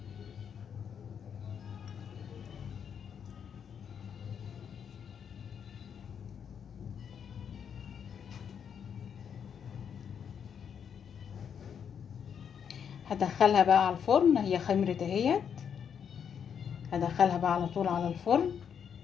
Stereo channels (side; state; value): right; quieter; 7.7 dB